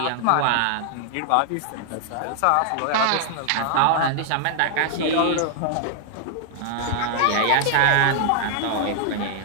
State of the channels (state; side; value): different; both; correlation -0.01